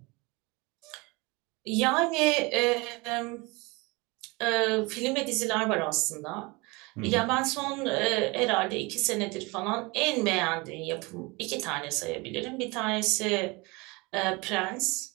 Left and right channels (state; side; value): quieter; left; 25.8 dB